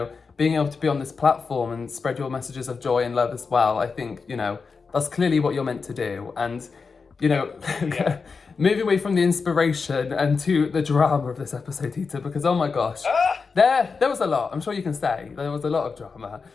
being able to be on this platform and spread your messages of joy and love as well. I think that's clearly what you're meant to do. And Yeah. moving away from the inspiration and to the drama of this episode, Dita, because oh my gosh, there was a lot. I'm sure you can say there was a lot of drama.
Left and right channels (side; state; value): right; quieter; 4.9 dB